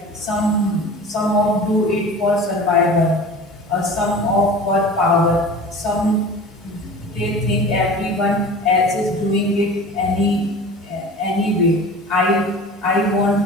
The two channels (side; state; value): both; normal; correlation 0.39